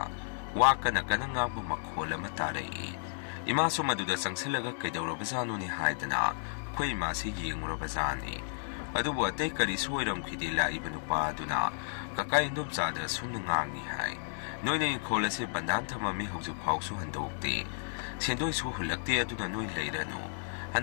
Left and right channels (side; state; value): right; silent; digital silence